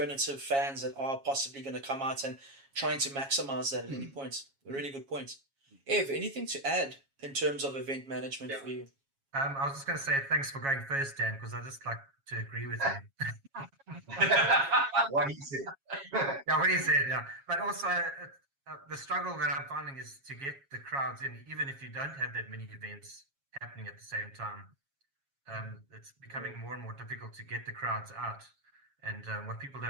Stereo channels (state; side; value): late; left; 7.3 ms